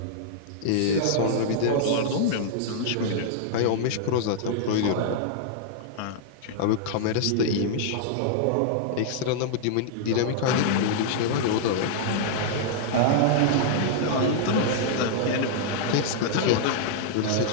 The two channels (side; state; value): both; different; correlation -0.01